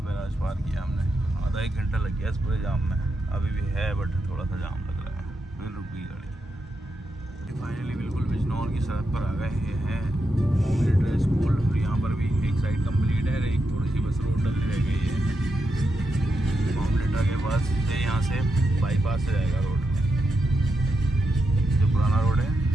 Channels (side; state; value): both; normal; correlation 0.85